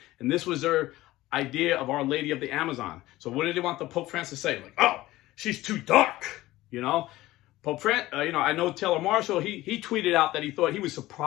And this was their idea of Our Lady of the Amazon. So what did they want the Pope Francis to say? Like, oh, she's too dark, you know? I know Telemarshall, he tweeted out that he thought he was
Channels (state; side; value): quieter; right; 17.1 dB